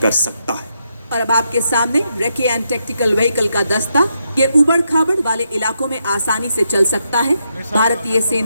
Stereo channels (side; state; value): both; inverted; correlation -0.81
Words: कर सकता है। और अब आपके सामने रेकी एंड टैक्टिकल व्हीकल का दस्ता, ये उबड़ खाबड़ वाले इलाकों में आसानी से चल सकता है। भारतीय